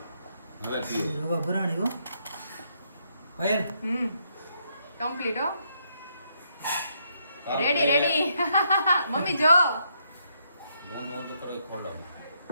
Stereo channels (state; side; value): inverted; both; correlation -0.75